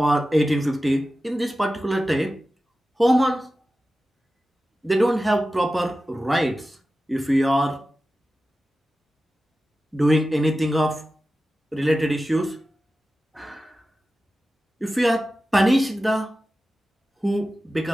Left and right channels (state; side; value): normal; both; correlation 0.94